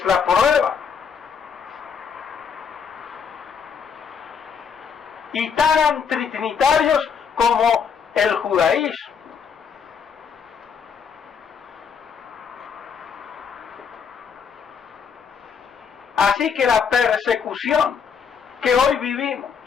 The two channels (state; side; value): quieter; right; 6.6 dB